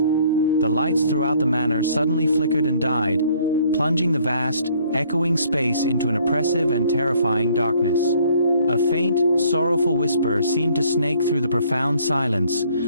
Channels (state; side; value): inverted; both; correlation -0.61